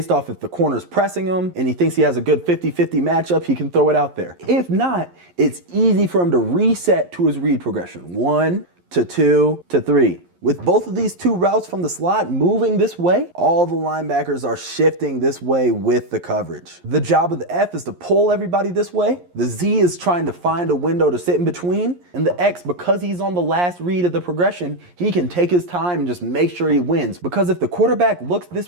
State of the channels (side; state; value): left; late; 11 ms